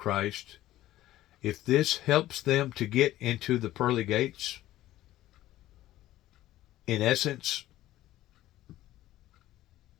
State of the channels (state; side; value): quieter; right; 14.8 dB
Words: if this helps them to get into the pearly gates, in essence,